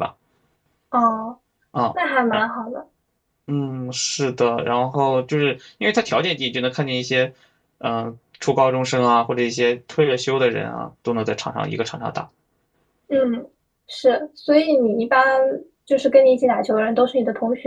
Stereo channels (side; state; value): both; identical; correlation 1.00